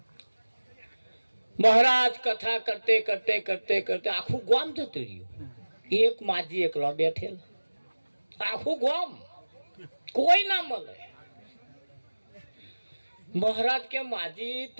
મહારાજ? કથા કરતે કરતે કરતે કરતે આખું ગામ જતું રહ્યું. એક માજી એકલો બેઠેલા, આખું ગામ કોઈ ના મળે. મહારાજ કે માજી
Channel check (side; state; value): both; inverted; correlation -1.00